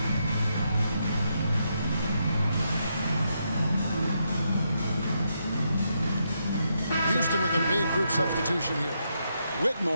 Houston with a big group substitution here.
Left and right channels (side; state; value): both; inverted; correlation -0.80